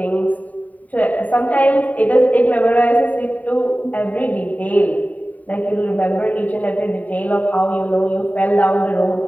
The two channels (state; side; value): late; right; 0.072 ms